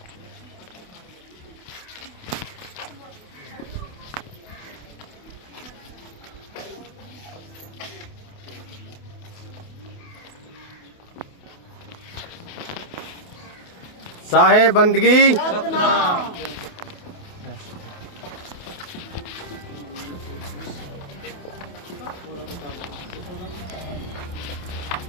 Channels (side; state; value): right; late; 28 ms